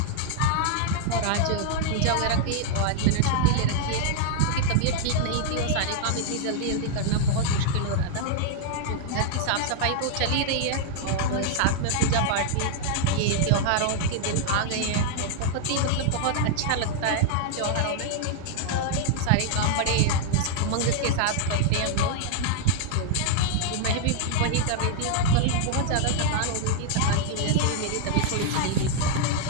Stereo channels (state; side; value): different; both; correlation 0.00